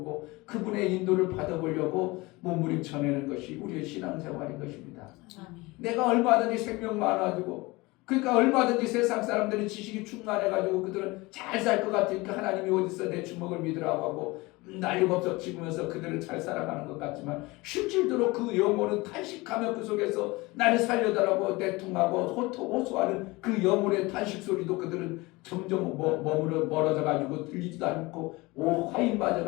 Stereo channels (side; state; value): right; quieter; 22.7 dB